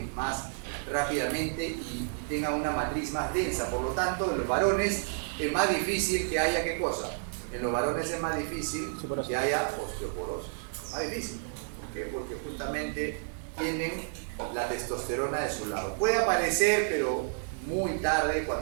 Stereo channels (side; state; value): left; silent; digital silence